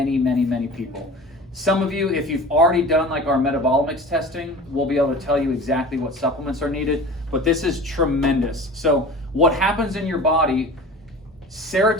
many, many people. Some of you, if you've already done like our metabolomics testing, we'll be able to tell you exactly what supplements are needed, but this is tremendous. So what happens in your body,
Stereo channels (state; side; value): normal; both; correlation 0.38